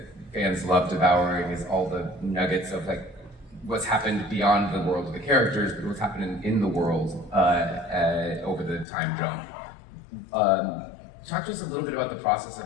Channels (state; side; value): drops out; right; at 8.8 s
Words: fans love devouring is all the nuggets of like what's happened beyond the world of the characters, but what's happened in the world over the time jump. Talk to us a little bit about the process